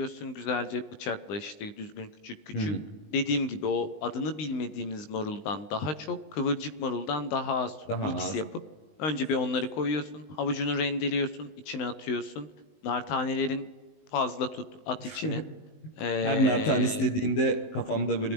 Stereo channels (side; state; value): right; late; 19 ms